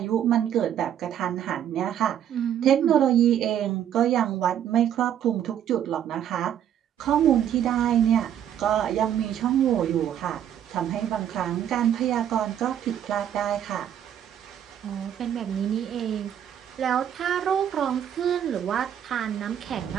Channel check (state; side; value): quieter; left; 9.9 dB